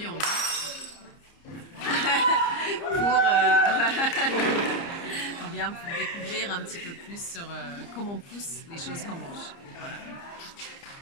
aujourd'hui, on vient pour découvrir un petit peu plus sur comment poussent les choses qu'on mange. Voilà.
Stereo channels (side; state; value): right; late; 30 ms